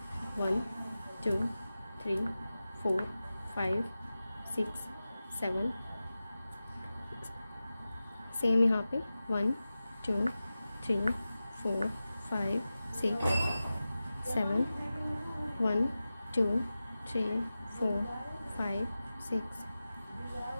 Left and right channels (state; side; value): inverted; both; correlation -0.95